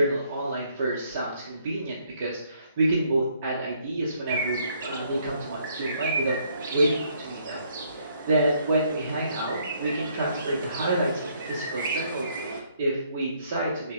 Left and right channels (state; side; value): inverted; both; correlation -0.68